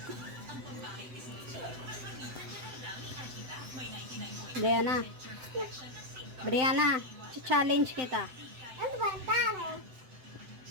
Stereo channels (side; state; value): left; late; 7.8 ms